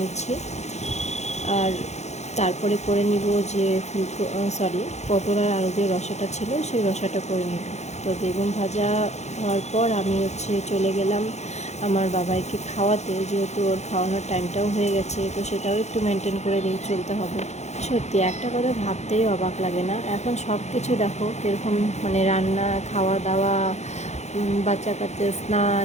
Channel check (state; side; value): late; right; 0.33 ms